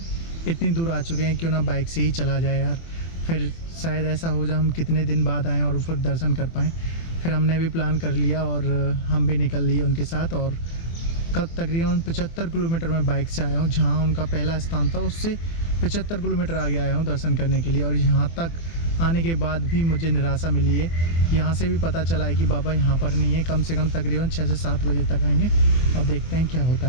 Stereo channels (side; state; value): right; late; 24 ms